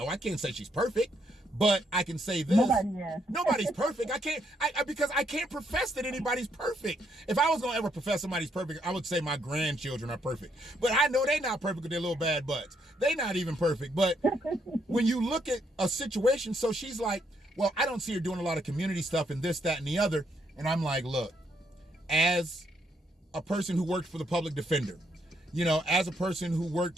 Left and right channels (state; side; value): normal; both; correlation 0.74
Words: I can't say she's perfect, but I can say this. Nobody's perfect. Because I can't profess that anybody's perfect. If I was gonna ever profess somebody's perfect, I would say my grandchildren are perfect. But I know they're not perfect with their little bad butts. They're not even perfect. But when you look at a situation, so she's like, well, I don't see her doing a lot of community stuff and this, that, and the other. And I'm like, look, as a person who worked for the public defender, you know, as a person who